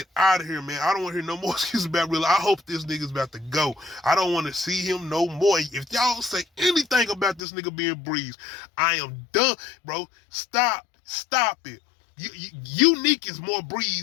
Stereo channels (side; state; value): right; drops out; at 7.4 s